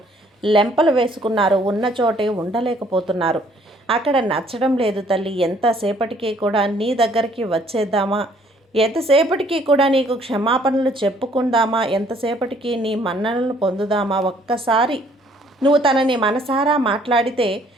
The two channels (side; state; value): both; normal; correlation 0.61